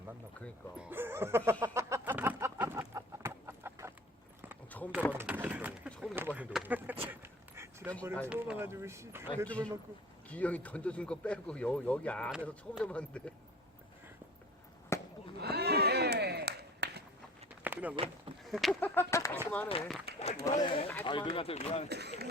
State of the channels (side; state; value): both; normal; correlation 0.44